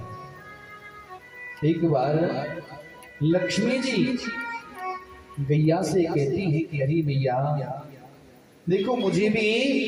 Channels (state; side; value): identical; both; correlation 1.00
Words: एक बार लक्ष्मी जी गैया से कहती है कि अरे भैया देखो, मुझे